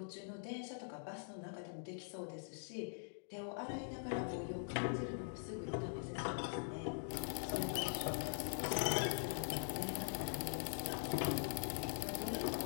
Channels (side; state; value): right; silent; digital silence